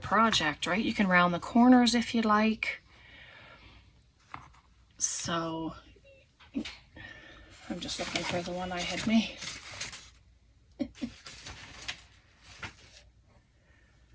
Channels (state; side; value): identical; both; correlation 1.00